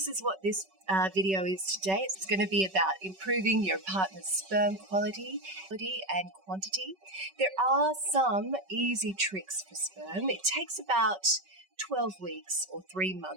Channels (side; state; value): left; late; 5.3 ms